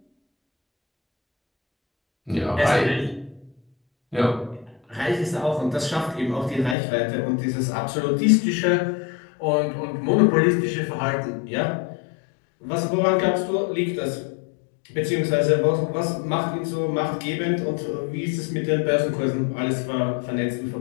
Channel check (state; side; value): drops out; right; at 6.8 s